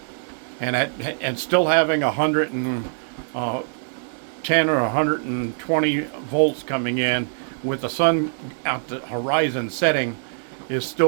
And still having 110 or 120 volts coming in with the sun at the horizon setting is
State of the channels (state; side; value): silent; left; digital silence